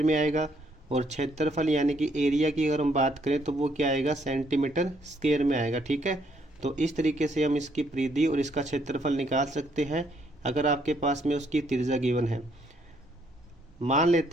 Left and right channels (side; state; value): both; normal; correlation 0.70